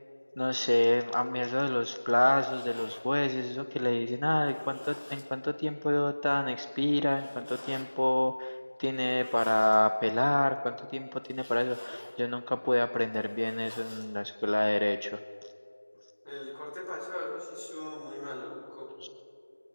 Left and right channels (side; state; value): both; inverted; correlation -1.00